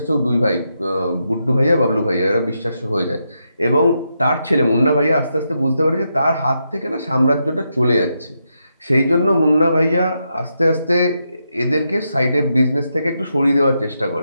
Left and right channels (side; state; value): both; inverted; correlation -0.83